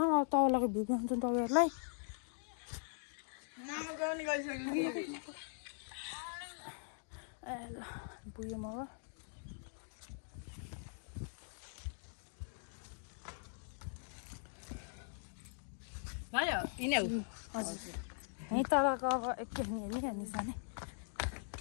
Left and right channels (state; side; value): silent; right; digital silence